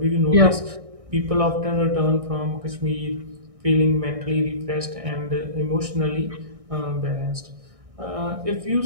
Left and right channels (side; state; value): left; late; 1.6 ms